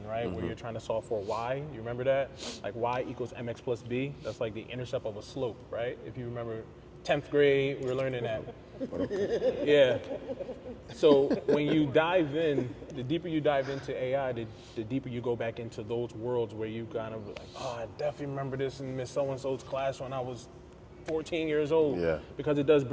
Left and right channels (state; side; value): identical; both; correlation 1.00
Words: right? Where you're trying to solve for y. You remember that? Like y equals mx plus b. That's like the intercept of a slope, right? If you remember 10th grade, we were learning that. Yeah. So when you dive in, the deeper you dive into AI, the deeper you go back into those worlds where you kind of like, I definitely remember this in Miss So-and-so's class when I was 14 years old. Because it does